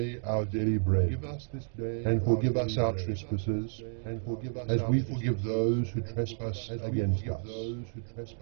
our daily bread, and forgive us our trespasses, as we forgive those who trespass against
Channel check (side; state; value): left; silent; 57 dB below the other